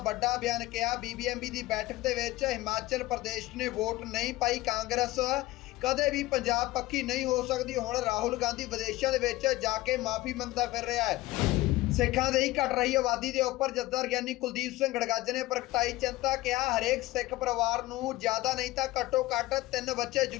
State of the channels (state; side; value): quieter; right; 18.3 dB